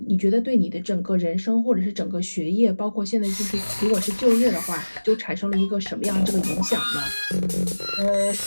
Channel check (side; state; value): both; inverted; correlation -1.00